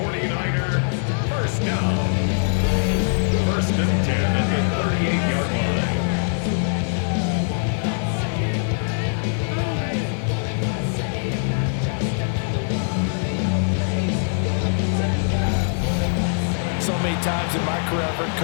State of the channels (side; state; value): right; silent; digital silence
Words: first down. First and 10 at the 38-yard line. So many times in my career, I've heard